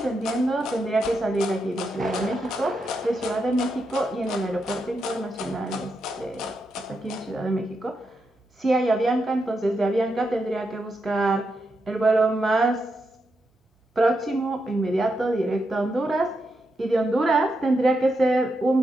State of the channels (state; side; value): normal; both; correlation 0.84